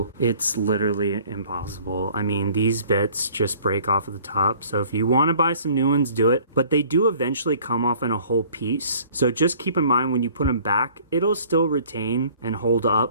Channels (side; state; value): both; inverted; correlation -0.53